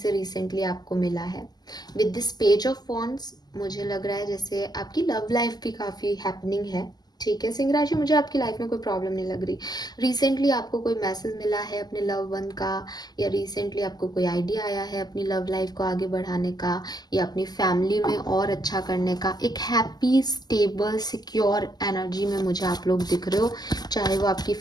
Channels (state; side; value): late; right; 0.20 ms